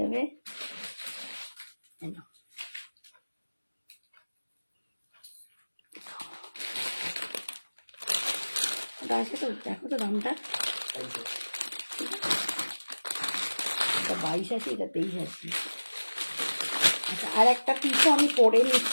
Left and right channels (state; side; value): inverted; both; correlation -1.00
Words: ওটা আছে তো, দেখো তো দামটা, এটা 22 আছে, এটা 23 আছে। আচ্ছা আর একটা পিসও আমি পরে